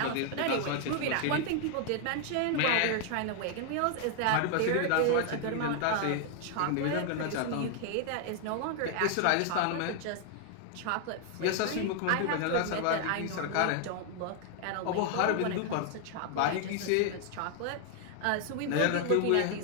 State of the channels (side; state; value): both; different; correlation 0.00